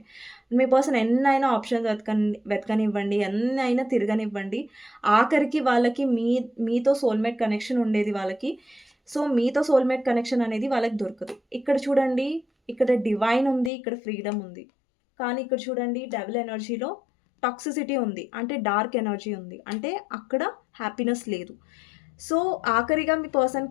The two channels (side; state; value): right; drops out; at 13.7 s